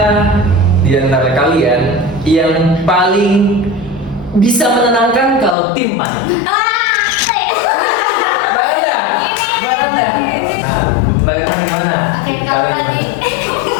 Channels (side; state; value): right; drops out; at 5.6 s